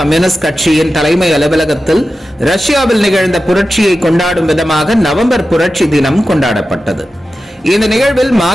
கம்யூனிஸ்ட் கட்சியின் தலைமை அலுவலகத்தில் ரஷ்யாவில் நிகழ்ந்த புரட்சியை கொண்டாடும் விதமாக நவம்பர் புரட்சி தினம் கொண்டாடப்பட்டது. இந்த நிகழ்வில்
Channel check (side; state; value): both; normal; correlation 0.93